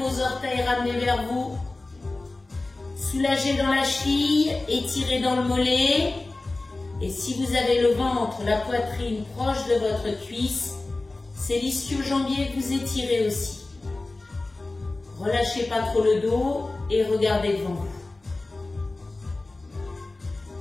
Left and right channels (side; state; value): right; quieter; 3.1 dB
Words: orteils, ramenez vers vous. Soulagez dans la cheville, étirez dans le mollet. Et si vous avez le ventre, la poitrine proche de votre cuisse, c'est l'ischio-jambier que vous étirez aussi. Relâchez pas trop le dos et regardez devant vous.